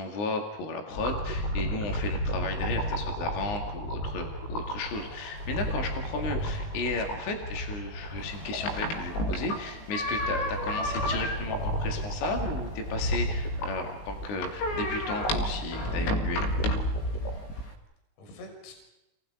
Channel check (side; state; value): right; late; 19 ms